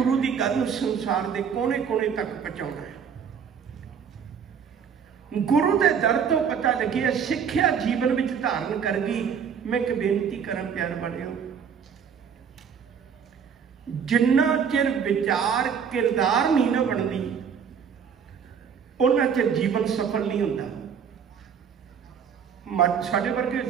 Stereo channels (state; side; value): quieter; left; 7.2 dB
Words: की गल नूं संसार के कोने कोने तक पहुंचाउणा है। गुरु के दर तो पता लगे सिक्ख्या जीवन में धारण कर गई। मैं एक बेनती करा प्यार बनियो, जिन्ना चिर विचार किरदार नहीं ना बनती उन्ना चिर जीवन सफल नहीं होता। साडे वर्गे